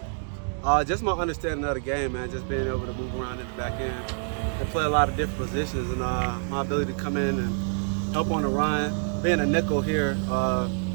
back? Just my understanding of the game, man. Just being able to move around in the back end and play a lot of different positions, and my ability to come in and help on the run. Being a nickel here, I'm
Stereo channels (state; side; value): silent; left; 60 dB below the other